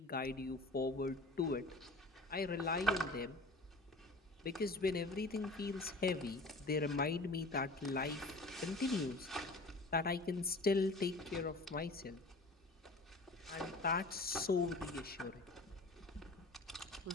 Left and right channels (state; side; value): normal; both; correlation 0.42